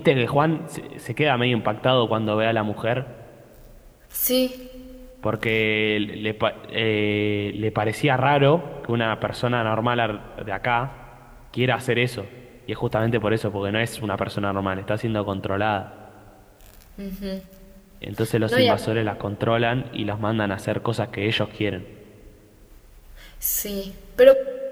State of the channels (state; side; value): identical; both; correlation 1.00